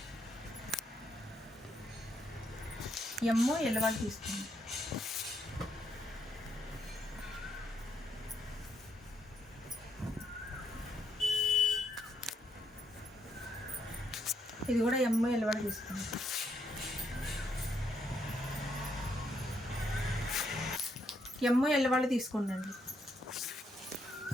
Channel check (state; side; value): normal; both; correlation 0.76